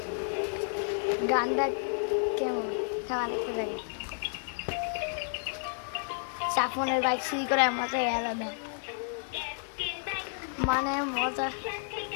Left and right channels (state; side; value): silent; right; digital silence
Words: গানটা কেমন খাওয়ানো যাই, সাফনের বাইক সিঁড়ি করে মজাই আলাদা, মানে মজা